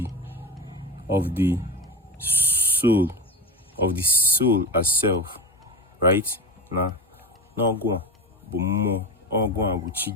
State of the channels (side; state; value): both; normal; correlation 0.22